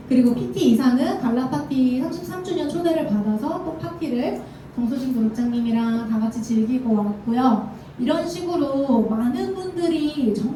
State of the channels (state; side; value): identical; both; correlation 1.00